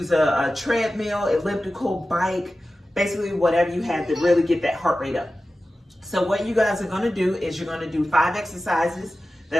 a treadmill, elliptical, bike, basically whatever you have to really get that heart rate up. So what you guys are going to do is you're going to do 5 exercises.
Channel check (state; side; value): normal; both; correlation 0.94